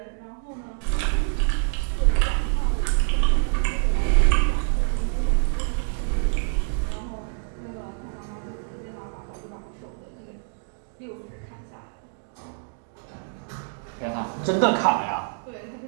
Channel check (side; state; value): left; silent; digital silence